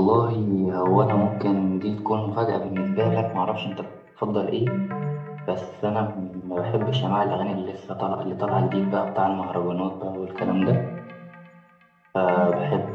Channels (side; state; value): both; identical; correlation 1.00